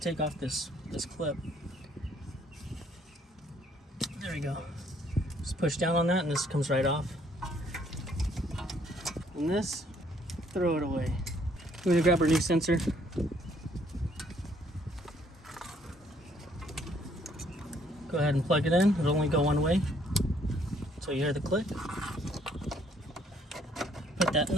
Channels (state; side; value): normal; both; correlation 0.65